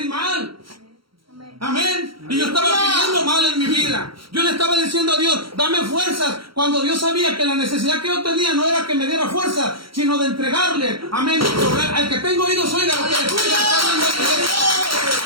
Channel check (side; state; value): left; late; 0.74 ms